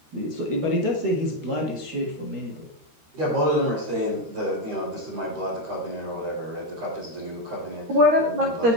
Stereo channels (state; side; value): late; left; 13 ms